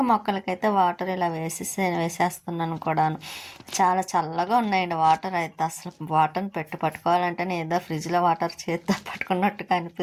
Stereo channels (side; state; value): both; identical; correlation 1.00